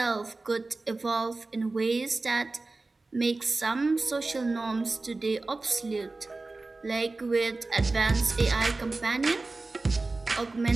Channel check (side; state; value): left; quieter; 3.4 dB